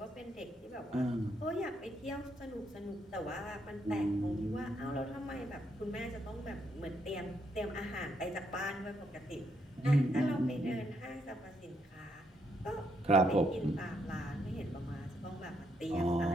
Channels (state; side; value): normal; both; correlation 0.76